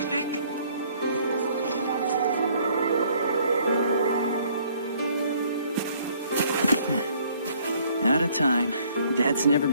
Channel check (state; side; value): inverted; both; correlation -0.61